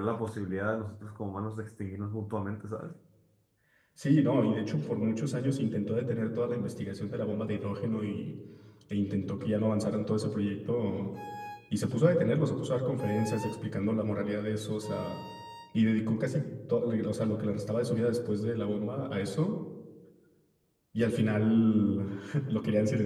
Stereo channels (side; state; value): both; identical; correlation 1.00